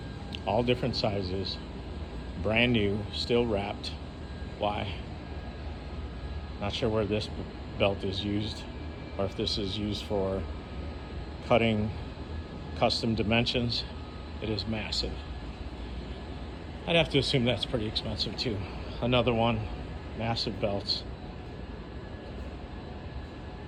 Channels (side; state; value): both; identical; correlation 1.00